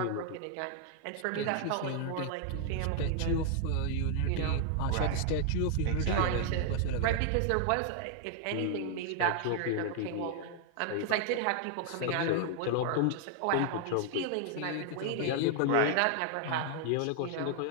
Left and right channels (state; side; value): different; both; correlation 0.00